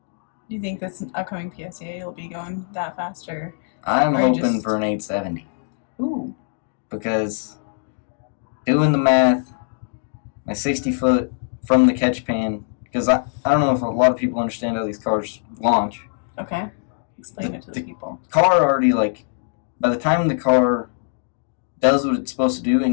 Do you think this upcoming PSA you'll be going that faster? I'm Or hoping just- for an 870 Ooh. because doing the math, my 60 foot from the catch pan, because I don't know if a lot of people understand how these cars launch. Okay. Explain it to the people. Car already, by the time the car does what it's supposed to do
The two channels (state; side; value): silent; right; 64 dB below the other